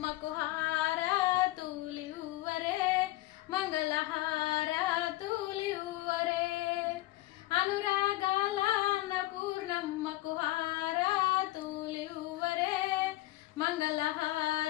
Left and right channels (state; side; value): quieter; right; 17.5 dB